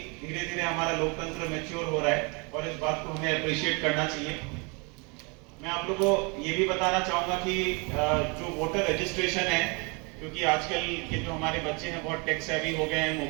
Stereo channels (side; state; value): left; quieter; 31.2 dB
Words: धीरे धीरे हमारा लोकतंत्र मैच्योर हो रहा है और इस बात को हमें अप्रिशिएट करना चाहिए। मैं आप लोगों को ये भी बताना चाहूंगा कि जो वोटर रजिस्ट्रेशन है, क्योंकि आजकल के जो हमारे बच्चे हैं बहुत टेक सेवी हो गए हैं,